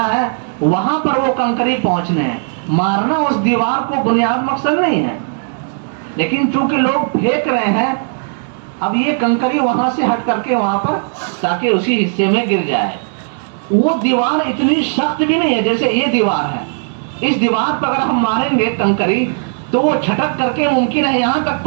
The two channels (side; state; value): left; silent; digital silence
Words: ہے، وہاں پر وہ کنکری پہنچنے ہیں، مارنا اس دیوار کو بنیاد مقصد نہیں ہے، لیکن چونکہ لوگ پھینک رہے ہیں اب یہ کنکری وہاں سے ہٹ کر کے وہاں پر تاکہ اسی حصے میں گر جائے۔ وہ دیوار اتنی سخت بھی نہیں ہے جیسے یہ دیوار ہے، اس دیوار پر اگر ہم ماریں گے کنکری تو وہ چھٹک کر کے ممکن ہے یہاں تک